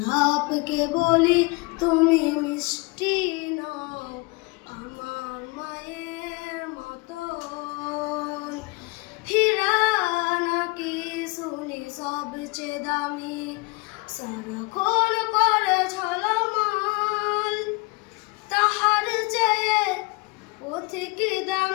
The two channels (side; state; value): right; quieter; 25.6 dB